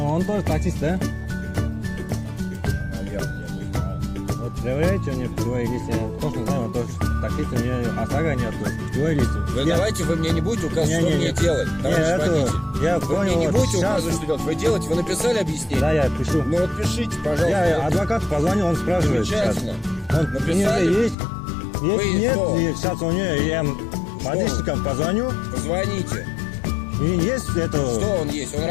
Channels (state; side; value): drops out; right; at 21.2 s